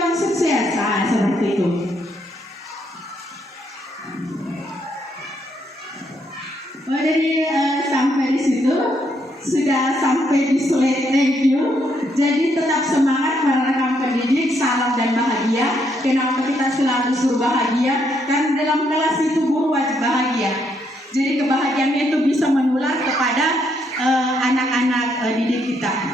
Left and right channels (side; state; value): both; normal; correlation 0.74